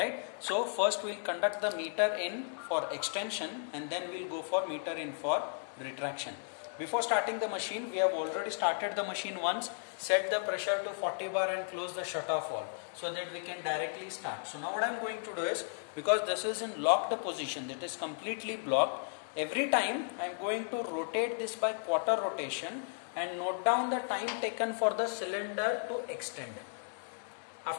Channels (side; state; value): right; silent; digital silence